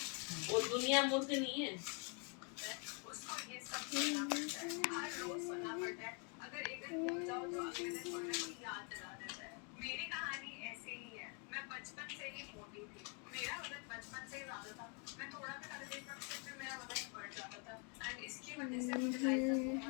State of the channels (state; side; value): quieter; right; 37.2 dB